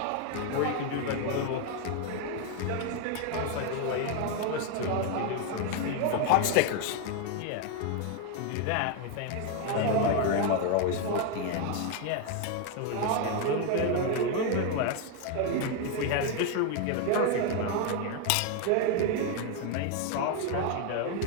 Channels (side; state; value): both; different; correlation 0.01